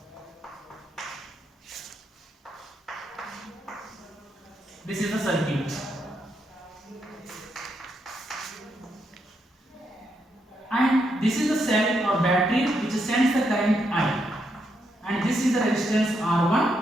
This is the circuit. And this is the cell or battery which sends the current I. And this is the resistance R1,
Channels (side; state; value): both; normal; correlation 0.79